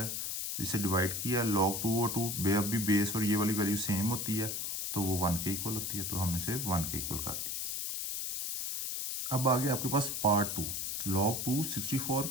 इसे डिवाइड किया log 2 और 2 अब भी बेस और ये वाली वैल्यू सेम होती है तो वो 1 के इक्वल होती है, तो हमने इसे 1 के इक्वल कर दिया। अब आ गया आपके पास पार्ट 2, log 2 64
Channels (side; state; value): left; noise; hiss, 2 dB below the sound